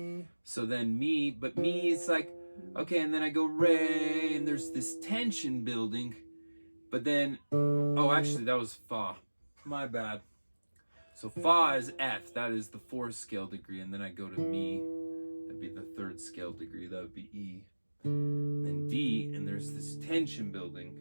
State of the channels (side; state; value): both; inverted; correlation -1.00